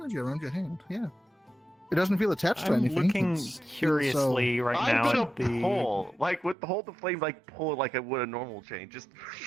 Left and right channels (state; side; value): drops out; left; at 6.6 s